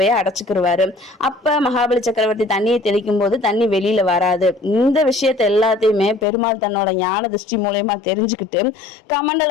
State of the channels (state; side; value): drops out; right; at 6.2 s